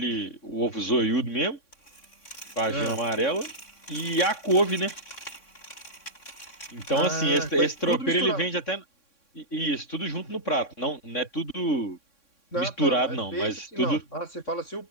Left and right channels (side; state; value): right; late; 3.6 ms